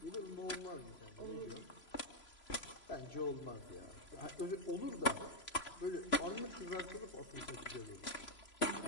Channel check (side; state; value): right; late; 3.0 ms